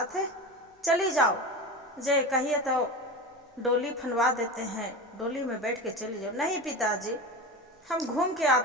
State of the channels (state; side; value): normal; both; correlation 0.26